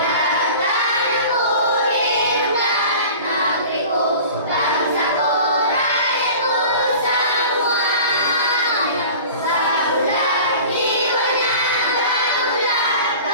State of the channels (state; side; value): inverted; both; correlation -0.40